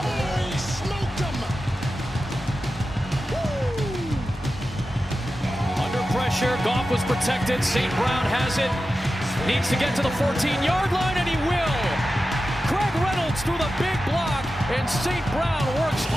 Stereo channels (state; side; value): normal; both; correlation 0.92